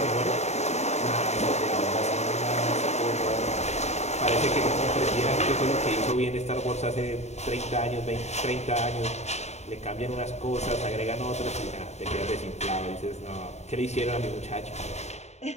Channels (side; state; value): right; late; 0.32 ms